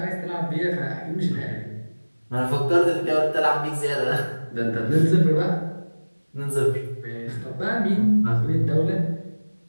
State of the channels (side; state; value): both; inverted; correlation -1.00